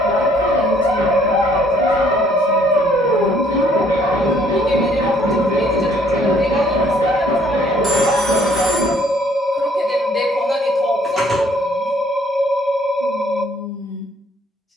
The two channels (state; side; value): normal; both; correlation 0.62